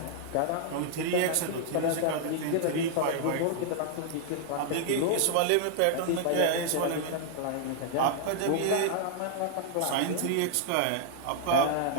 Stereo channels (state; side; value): different; both; correlation 0.00